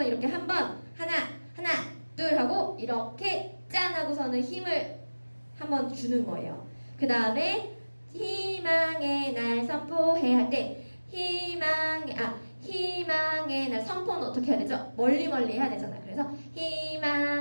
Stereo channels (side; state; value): both; inverted; correlation -1.00